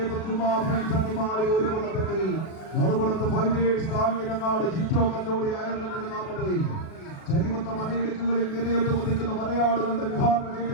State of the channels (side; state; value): right; late; 37 ms